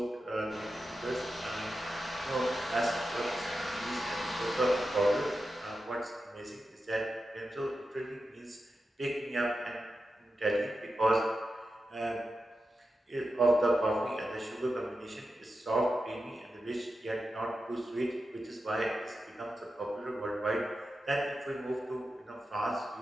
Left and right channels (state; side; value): normal; both; correlation 0.90